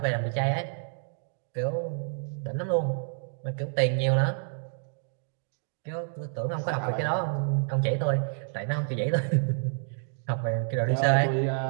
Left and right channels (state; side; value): silent; left; digital silence